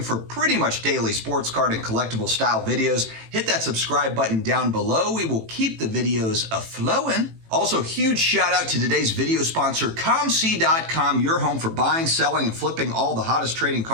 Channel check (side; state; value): left; late; 18 ms